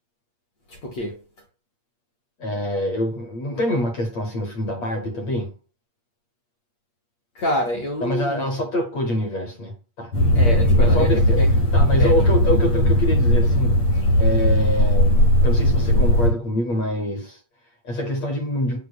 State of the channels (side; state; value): right; late; 8.5 ms